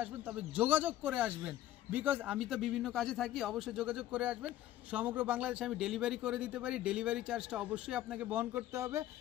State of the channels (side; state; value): right; quieter; 13.5 dB